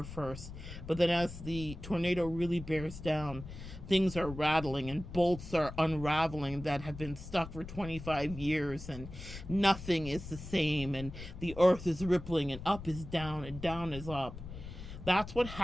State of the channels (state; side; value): noise; left; rumble, 12 dB below the sound